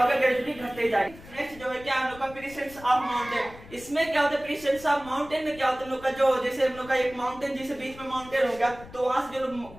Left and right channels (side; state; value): left; noise; rumble, 19 dB below the sound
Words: ग्रेजुअली घटते ही जाएगा। नेक्स्ट जो है क्या हम लोग का प्रेजेंस ऑफ माउंटेन, इसमें क्या होता है, प्रेजेंस ऑफ माउंटेन में क्या होता है, हम लोग का जो जैसे हम लोग का एक माउंटेन, जैसे बीच में माउंटेन हो गया, तो वहां से जो